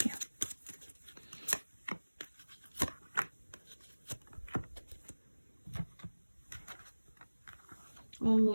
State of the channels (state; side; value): inverted; both; correlation -1.00